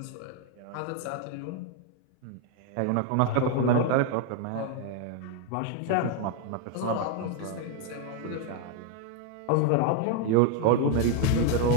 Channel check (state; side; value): different; both; correlation 0.00